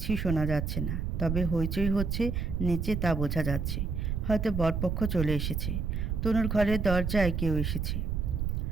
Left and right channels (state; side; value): noise; right; rumble, 1 dB below the sound